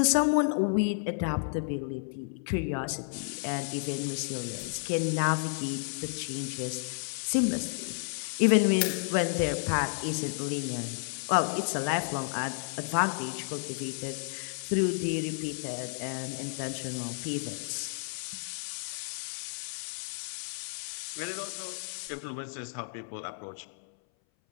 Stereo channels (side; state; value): right; silent; 57 dB below the other